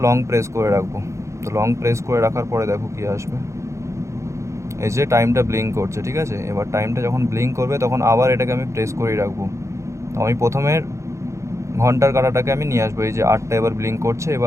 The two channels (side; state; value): left; late; 0.14 ms